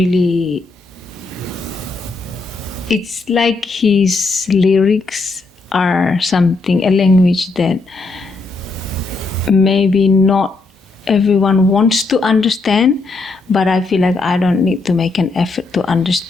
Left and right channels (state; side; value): quieter; right; 3.7 dB